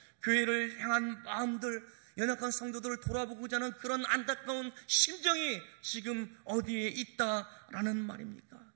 교회를 향한 마음들, 연약한 성도들을 돌아보고자 하는 그런 안타까운 심정이 지금 어디에 있다라는 말입니까?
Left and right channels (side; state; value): left; silent; digital silence